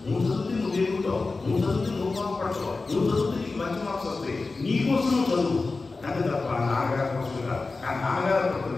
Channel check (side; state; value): right; quieter; 3.8 dB